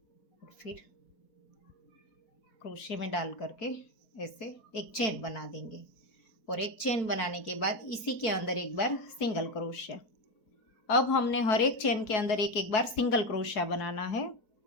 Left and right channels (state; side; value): late; right; 4.7 ms